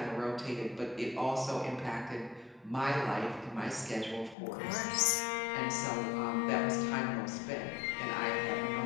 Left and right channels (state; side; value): drops out; right; at 4.4 s